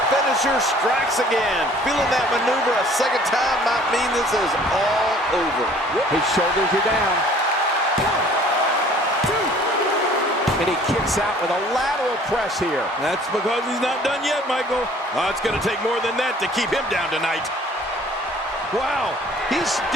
finisher strikes again. Feeling that maneuver a second time might mean this is all over. His shoulders are down. And he kicks out with a lateral press here. That's because he's not done yet, Michael. Oh, it's going to take more than that to keep him down tonight. Wow, he's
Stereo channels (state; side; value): normal; both; correlation 0.53